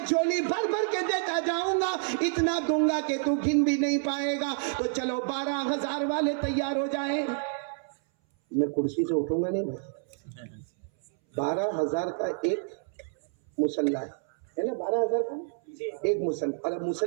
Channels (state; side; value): silent; left; 59 dB below the other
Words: झोली भर भर के देता जाऊंगा, इतना दूंगा कि तू गिन भी नहीं पाएगा। तो चलो 12,000 वाले तैयार हो जाए। मैं कुर्सी से उठूंगा नहीं भाई। 12,000 का एक मुसल्ला है ना, 12,000 का एक मुसल्ला। और अब